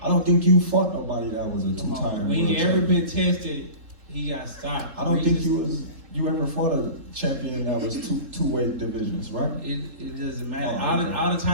I don't think you fought nobody that was a 2-time world When he champion. ever been tested, he got stopped. I don't think you ever fought a champion that was two-weight divisions, right? It doesn't matter. Oh, okay. All the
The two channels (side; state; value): left; late; 3.7 ms